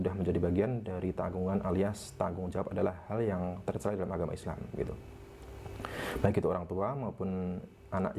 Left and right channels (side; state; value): both; identical; correlation 1.00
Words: menjadi bagian dari tanggungan alias tanggung jawab adalah hal yang tercela dalam agama Islam gitu. Baik itu orang tua maupun anak